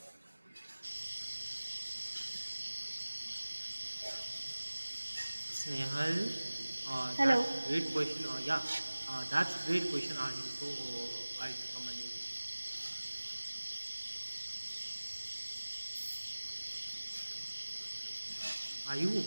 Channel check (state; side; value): inverted; both; correlation -1.00